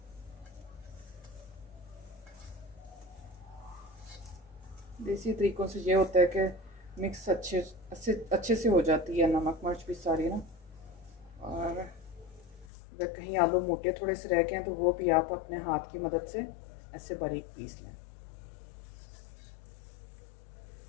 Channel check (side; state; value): right; drops out; at 12.7 s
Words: देसी तरीक़ों से ये होता है कि मिक्स अच्छे से हो जाती है नमक मिर्च भी सारी ना। और अगर कहीं आलू मोटे थोड़े से रह गए हैं तो वो भी आप अपने हाथ की मदद से ऐसे बारीक पीस लें।